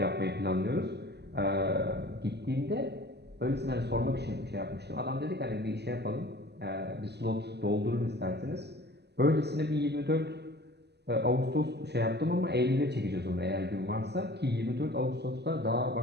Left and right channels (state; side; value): late; left; 0.49 ms